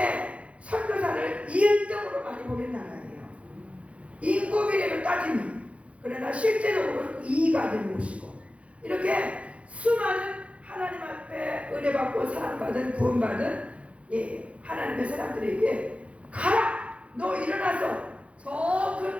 선교사를 2등으로 많이 보낸 나라예요. 인구 비례로 따지면. 그러나 실제적으로는 2위가 되는 곳이고 이렇게 수많은 하나님 앞에 은혜받고 사랑받은 구원받은 하나님의 사람들에게 가라! 너 일어나서 저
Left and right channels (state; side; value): late; left; 0.063 ms